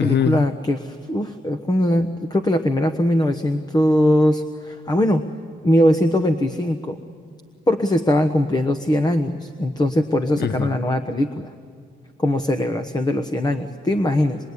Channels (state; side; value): normal; both; correlation 0.85